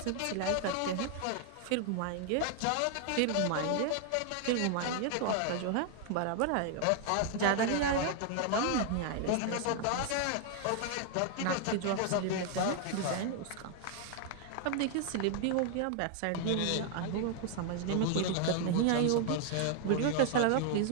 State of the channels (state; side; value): different; both; correlation 0.00